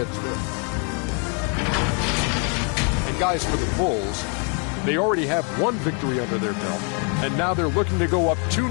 Smith. And guys, for the Bulls, they already have one victory under their belt, and now they're looking to go up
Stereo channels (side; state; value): right; quieter; 38.5 dB